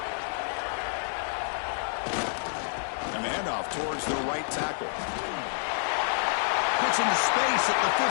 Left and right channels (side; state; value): right; silent; digital silence